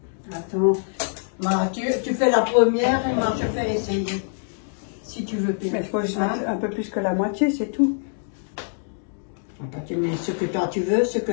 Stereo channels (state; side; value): silent; right; digital silence